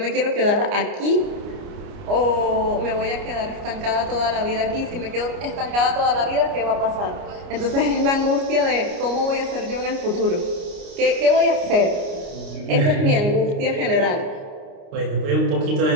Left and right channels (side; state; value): left; late; 29 ms